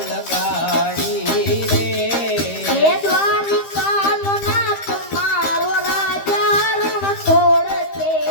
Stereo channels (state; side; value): late; right; 13 ms